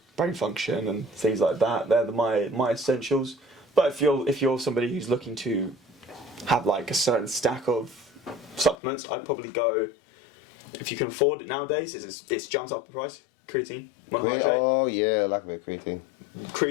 Brain function and things like that. They're my essentials. But if you're somebody who's looking to have a certain stack of supplements, I'd probably go, if you can afford it nowadays, it's jumped up in price. Creatine monohydrate. Oh yeah, I like a bit of creatine.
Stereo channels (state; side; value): drops out; right; at 8.8 s